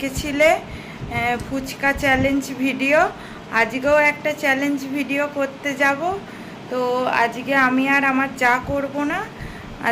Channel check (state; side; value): identical; both; correlation 1.00